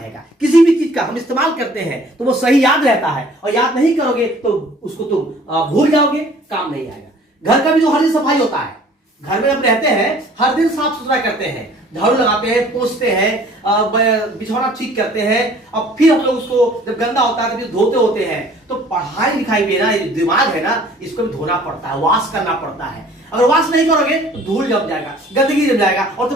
किसी भी चीज का हम इस्तेमाल करते हैं तो वो सही याद रहता है, और याद नहीं करोगे तो उसको तुम भूल जाओगे, काम नहीं आएगा। घर का भी जो हर दिन सफाई होता है, घर में हम रहते हैं, हर दिन साफ सुथरा करते हैं, झाड़ू लगाते हैं, पोंछते हैं, बिछौना ठीक करते हैं, अब फिर हम लोग उसको जब गंदा होता है तो फिर धोते होते हैं। तो पढ़ाई लिखाई में ना, ये दिमाग है ना, इसको भी धोना पड़ता है, वॉश करना पड़ता है। अगर वॉश नहीं करोगे तो धूल जम जाएगा, गंदगी जम जाएगा और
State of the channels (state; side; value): normal; both; correlation 0.52